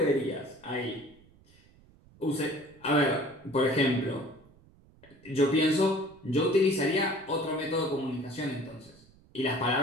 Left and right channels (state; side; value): noise; right; rumble, 27 dB below the sound